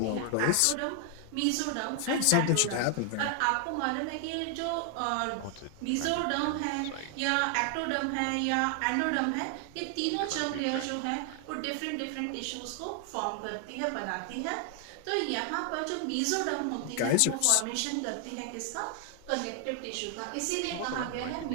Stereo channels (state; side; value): different; both; correlation 0.00